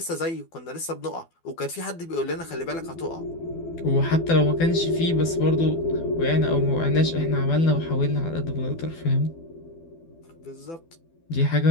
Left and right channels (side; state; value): right; late; 12 ms